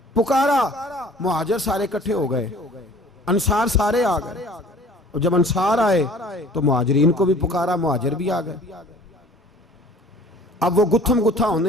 पुकारा, मुहाजिर सारे इकट्ठे हो गए, अंसार सारे आ गए। और जब अंसार आए तो मुहाजिरीन को भी पुकारा, मुहाजिर भी आ गए। अब वो गुत्थम गुत्था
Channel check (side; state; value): both; normal; correlation 0.50